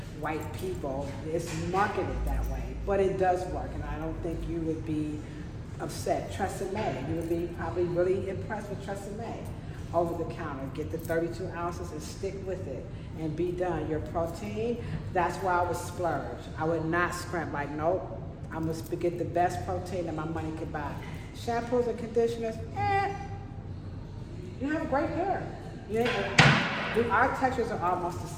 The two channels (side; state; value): both; identical; correlation 1.00